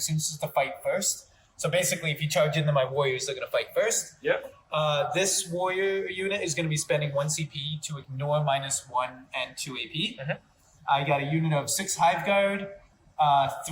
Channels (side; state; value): both; identical; correlation 1.00